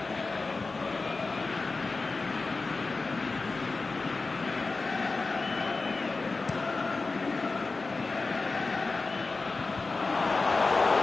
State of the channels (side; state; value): right; quieter; 3.8 dB